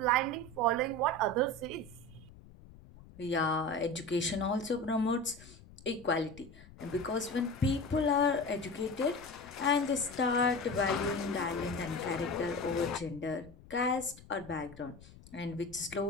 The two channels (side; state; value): left; noise; rumble, 21 dB below the sound